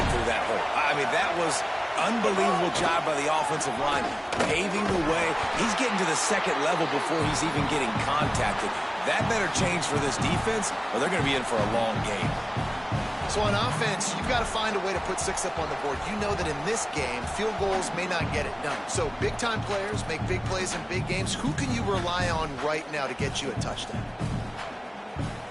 through that hole. I mean, that was unbelievable job by the offensive line, paving the way. He's getting to the second level before he's even getting contacted. That better change for this defense, or they're going to be in for a long game. So on offense, you've got to find a way to put 6 up on the board. You know that in this game, field goals may not get it done. So big-time players make big plays in big games. Who can you rely on right now to get you a touchdown?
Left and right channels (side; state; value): both; identical; correlation 1.00